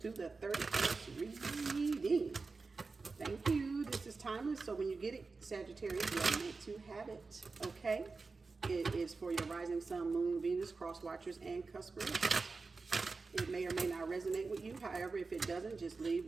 through the 31st reading. Thank you. This is timeless, so when you get it, Sagittarius, you are meant to have it, okay? It is for your rising sun, moon, Venus, cross watchers, and cuspers. It may or may not resonate with you. However, if it doesn't, just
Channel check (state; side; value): quieter; left; 4.1 dB